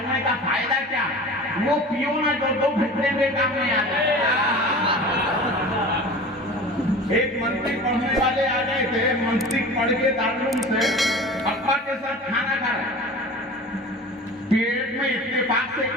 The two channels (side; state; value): both; normal; correlation 0.37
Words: का फायदा क्या? वो पियो ना जो 2 घंटे में काम में आ जाए। एक मंत्री पढ़ने वाले आ गए थे। मंत्री पढ़ के दारुल से अब्बा के साथ खाना खा रहे, पेट में इत्तेफाक से